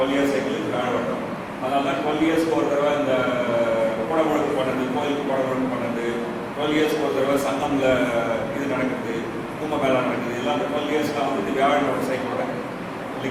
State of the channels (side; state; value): both; identical; correlation 1.00